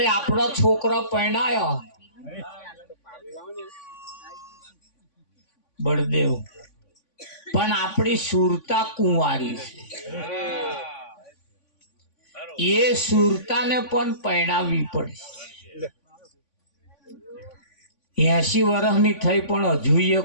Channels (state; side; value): late; right; 3.5 ms